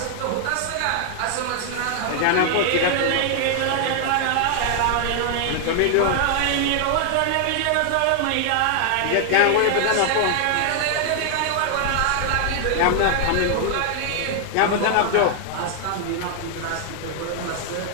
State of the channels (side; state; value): both; different; correlation 0.00